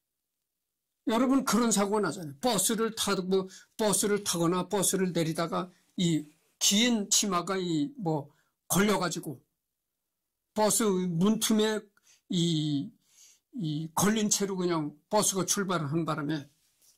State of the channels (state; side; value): identical; both; correlation 1.00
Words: 여러분 그런 사고가 나잖아요. 버스를 타거나 버스를 내리다가 이 긴 치마가 뭐 걸려가지고 버스 문틈에 이 걸린 채로 그냥 버스가 출발을 한 바람에